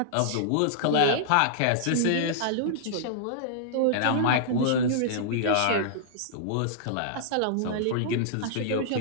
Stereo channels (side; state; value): both; different; correlation -0.02